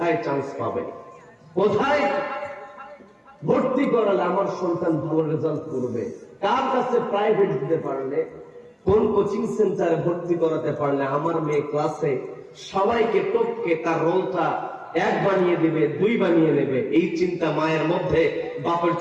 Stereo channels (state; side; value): identical; both; correlation 1.00